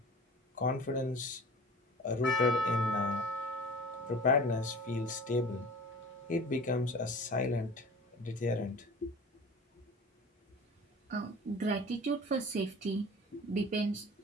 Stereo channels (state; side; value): normal; both; correlation 0.41